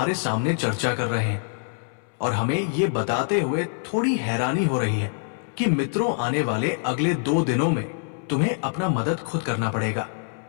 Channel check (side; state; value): right; silent; 62 dB below the other